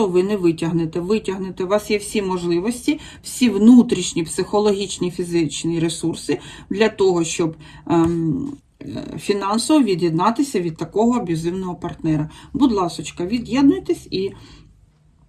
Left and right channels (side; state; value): both; identical; correlation 1.00